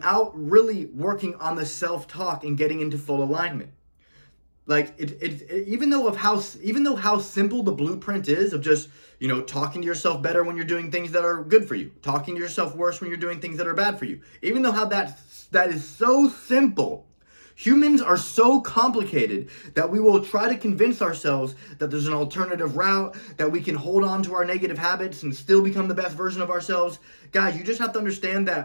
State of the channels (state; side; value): inverted; both; correlation -1.00